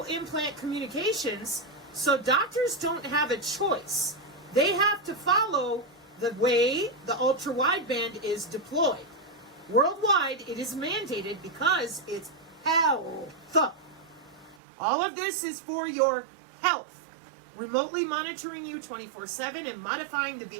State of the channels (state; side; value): drops out; left; at 14.6 s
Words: implant communications, so doctors don't have a choice. They have to follow the way the ultra-wideband is deployed. Worldwide, it is mandated because it's health. All of this is for your health. Remotely monitoring you 24/7 and modifying the